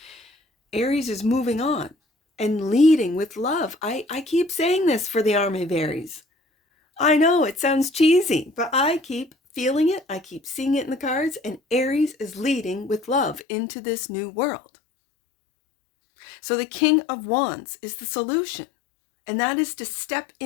Aries is moving on and leading with love. I keep saying this for the Army of Aries. I know it sounds cheesy, but I keep feeling it. I keep seeing it in the cards. And Aries is leading with love into this new world. So the King of Wands is the solution. And that is to step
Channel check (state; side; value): drops out; right; at 13.5 s